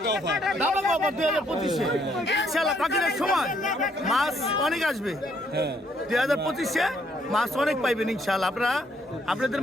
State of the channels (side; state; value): both; normal; correlation 0.69